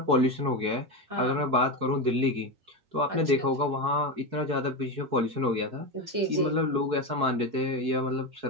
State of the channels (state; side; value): late; left; 4.6 ms